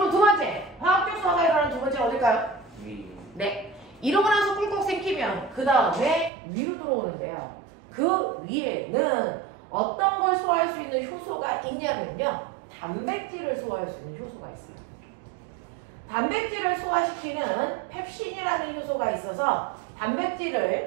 두 번째, 화학적 소화가 일어나는 두 번째는 어딜까요? 네. 이러고 나서 꿀꺽 생기면 그 다음에 위로 들어오는데요. 그 위에는 어떤 걸 소화할 수 있는 효소가 있냐면요. 단백질을 소화할 수 있는 효소가 있어요. 단백질을 소화시키는 펩신이라는 효소가 있어서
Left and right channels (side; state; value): left; drops out; at 6.3 s